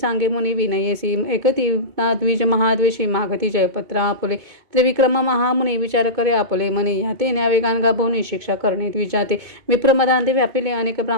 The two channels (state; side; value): late; left; 2.2 ms